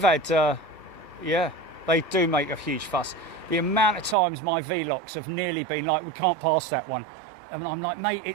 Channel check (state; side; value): drops out; left; at 4.2 s